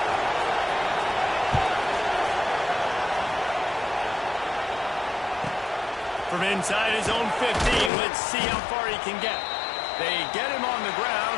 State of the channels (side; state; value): right; drops out; at 7.9 s